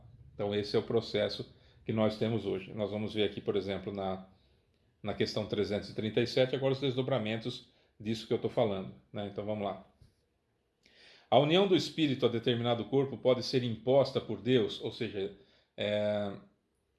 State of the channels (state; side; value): identical; both; correlation 1.00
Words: Então esse é o processo que nós temos hoje. Nós vamos ver aqui, por exemplo, na questão 337, agora os desdobramentos disso que eu estou falando, né? Então vamos lá. A união do espírito a determinado corpo pode ser imposta por Deus, ou seja,